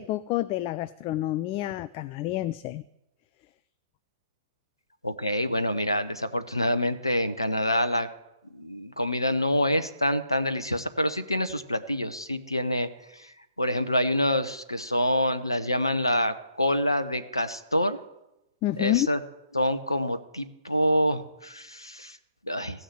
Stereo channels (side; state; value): both; inverted; correlation -0.71